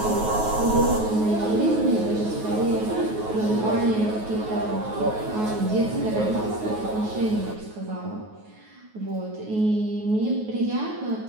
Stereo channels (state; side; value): late; left; 9.4 ms